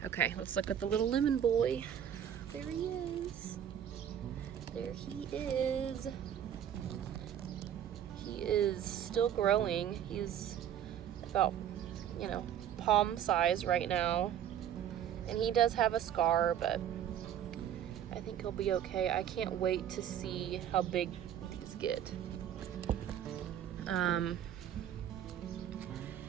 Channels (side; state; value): left; quieter; 9.8 dB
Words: Okay, let's look at the little lemon boy. There he is. There he is. He is still growing. He's about, you know, palm size right now. And he does have a scar, but I think he'll be okay. I can't wait to see how big these get.